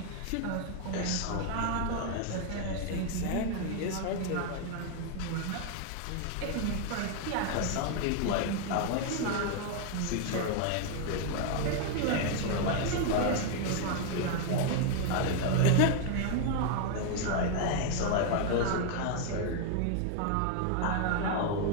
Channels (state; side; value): different; both; correlation 0.00